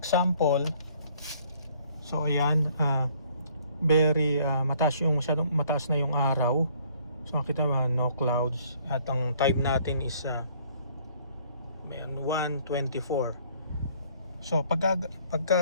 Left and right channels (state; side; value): inverted; both; correlation -0.61